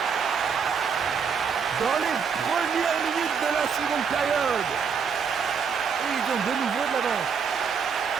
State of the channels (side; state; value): left; quieter; 6.4 dB